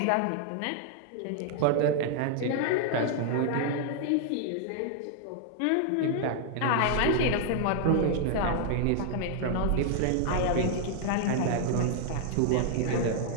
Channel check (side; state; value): both; different; correlation 0.00